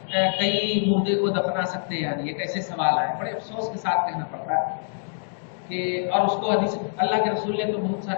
کئی مردے کو دفنا سکتے ہیں، یعنی ایک ایسے سوال آئے، بڑے افسوس کے ساتھ کہنا پڑتا ہے کہ، اور اس کو حدیث اللہ کے رسول نے تو بہت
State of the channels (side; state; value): right; silent; digital silence